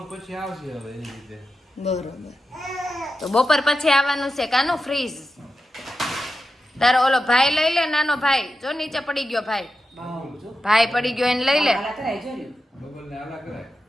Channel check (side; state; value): both; normal; correlation 0.90